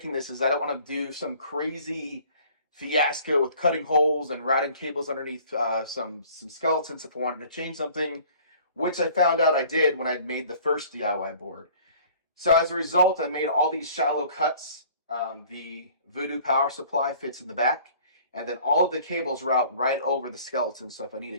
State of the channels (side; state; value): both; inverted; correlation -0.51